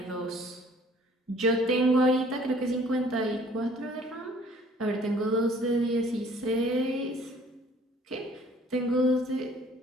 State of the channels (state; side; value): normal; both; correlation 0.55